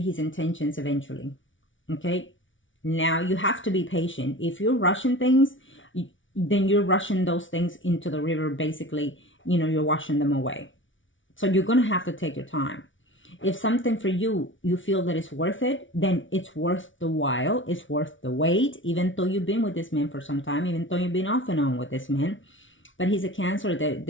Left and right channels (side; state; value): right; late; 0.56 ms